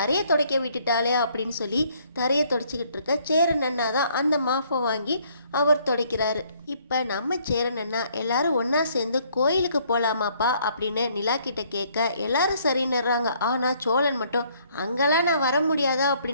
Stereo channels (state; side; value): inverted; both; correlation -0.65